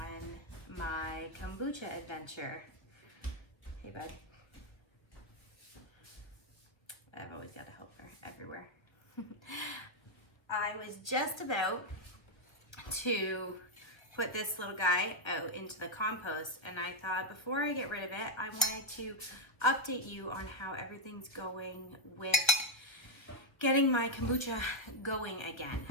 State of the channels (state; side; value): late; right; 1.1 ms